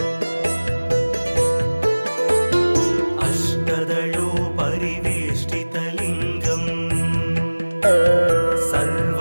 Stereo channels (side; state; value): both; inverted; correlation -1.00